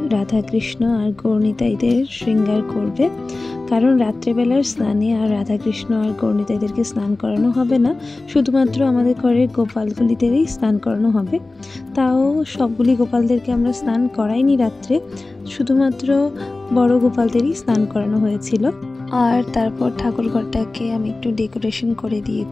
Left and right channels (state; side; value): quieter; right; 3.2 dB